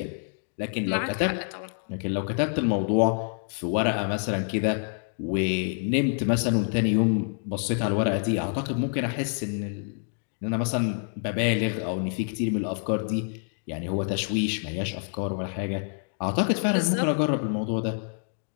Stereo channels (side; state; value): right; silent; 60 dB below the other